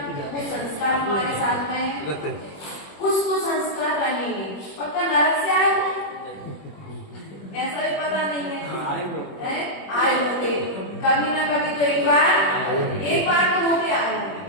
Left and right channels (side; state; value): right; late; 21 ms